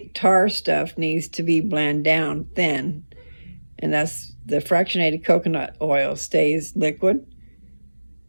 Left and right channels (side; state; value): both; inverted; correlation -1.00